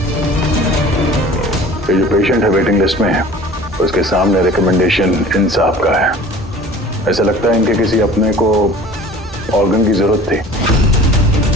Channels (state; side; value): normal; both; correlation 0.44